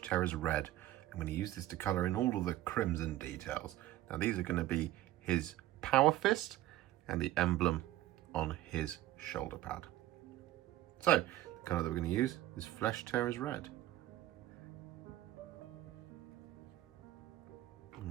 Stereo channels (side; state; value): left; quieter; 15.1 dB